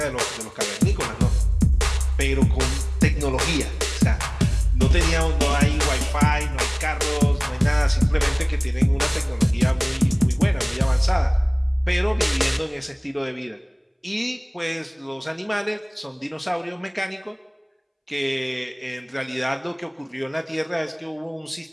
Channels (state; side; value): identical; both; correlation 1.00